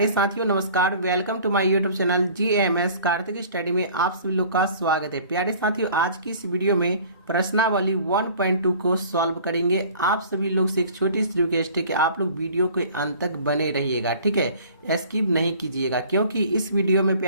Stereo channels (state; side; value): inverted; both; correlation -0.48